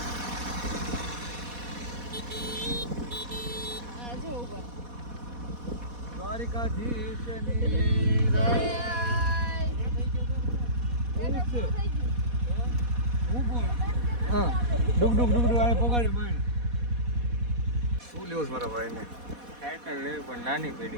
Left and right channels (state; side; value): late; left; 4.1 ms